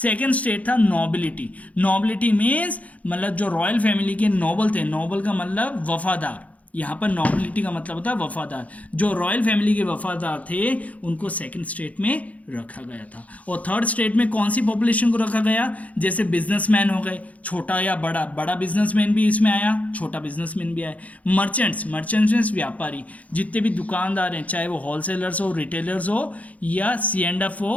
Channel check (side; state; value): right; late; 0.069 ms